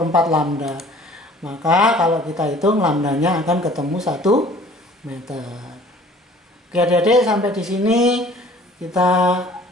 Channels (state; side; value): normal; both; correlation 0.51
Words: lambda. Maka kalau kita hitung lambdanya akan ketemu 1 meter. Oke adik-adik, sampai di sini kita